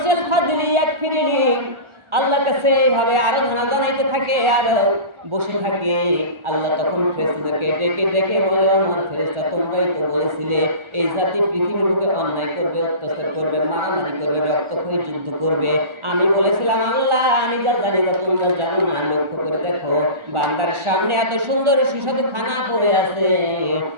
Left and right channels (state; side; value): late; left; 1.4 ms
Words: ফাদিলি এক ফিরিনি, আল্লাহর কাছে এইভাবে আরাধনা জানাইতে থাকে আর বসে থাকে, আল্লাহ তখন ফেরেশতাদেরকে ডেকে ডেকে বলে, আমার ফেরেশতা তোমরাই তো বলেছিলে এই জাতি পৃথিবীর বুকে অন্যায় করবে, অত্যাচার করবে, মারামারি করবে, রক্তক্ষয়ী যুদ্ধ করবে। আমি বলেছিলাম, আল্লাহ আমি যা জানি না তোমরা জানো না। লক্ষ্য করে দেখো, বান্দার সামনে এত সুন্দর সুস্বাদু খানা পড়ে আছে,